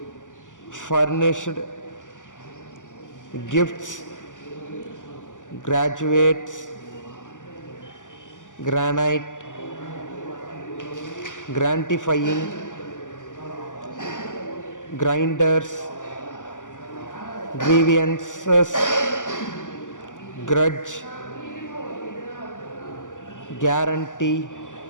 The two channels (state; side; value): late; right; 0.87 ms